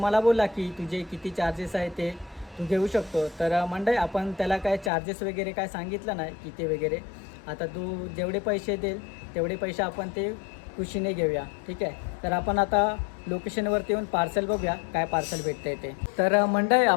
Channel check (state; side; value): drops out; right; at 4.9 s